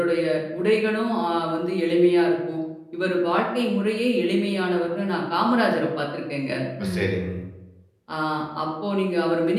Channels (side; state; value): both; identical; correlation 1.00